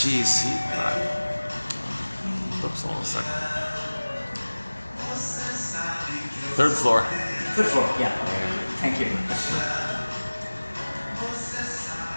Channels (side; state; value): both; inverted; correlation -1.00